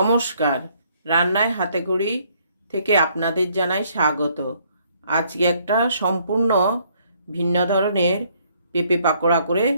রান্নায় হাতেখড়ি থেকে আপনাদের জানাই স্বাগত। আজকে একটা সম্পূর্ণ ভিন্ন ধরনের পেঁপে পাকোড়া করে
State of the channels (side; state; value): both; inverted; correlation -0.66